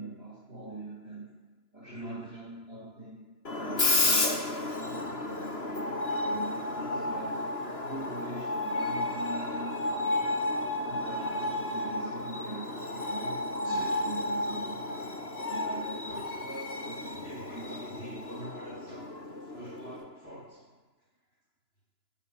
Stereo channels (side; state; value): right; late; 2.9 ms